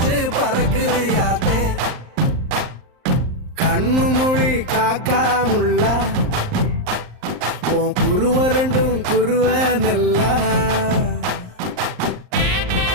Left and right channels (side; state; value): left; late; 39 ms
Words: பறக்குது யாத்தே கண்ணு மொழி காக்காமுள்ள உன் குருவ ரெண்டும் குருவ நெல்லா